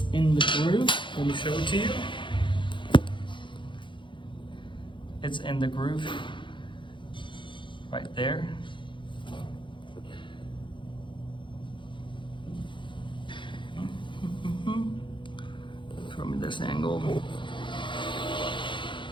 in the groove. Let me show it to you. It's in the groove right there. From this angle.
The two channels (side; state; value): right; late; 0.23 ms